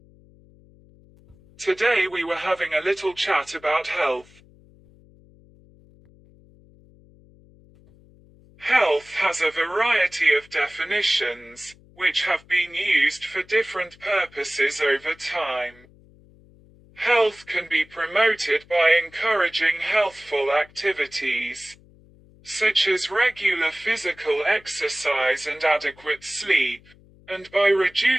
Today we were having a little chat about health. Health has a variety of definitions, which have been used for different purposes over time. Health can be promoted by encouraging healthful activities, such as regular physical exercise and adequate sleep, and by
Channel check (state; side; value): noise; left; hum, 27 dB below the sound